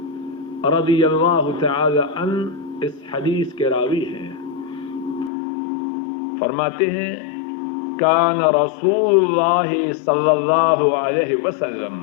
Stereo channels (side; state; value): right; drops out; at 5.3 s